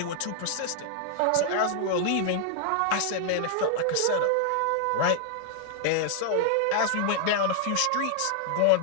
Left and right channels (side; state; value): both; different; correlation 0.00